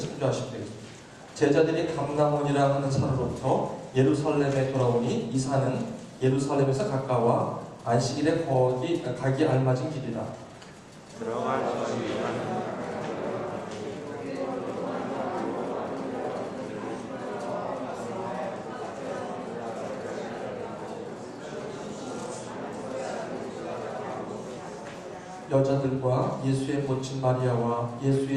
되겠습니다. 제자들이 감람원이라 하는 산으로부터 예루살렘에 돌아오니 이 산은 예루살렘에서 가까워 안식일에 가기 알맞은 길이라. 여자들과 예수의 모친 마리아와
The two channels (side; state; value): both; identical; correlation 1.00